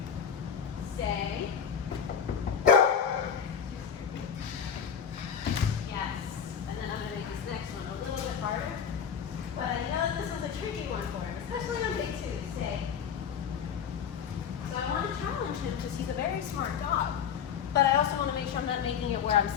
Stay. Yes. And then I'm going to make this next one a little bit harder. But I know that this was a tricky one for him, especially on day 2. Stay. So I want to challenge him because he's a very smart dog. But I also want to make sure I'm not making it where I'm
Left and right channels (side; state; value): right; quieter; 7.6 dB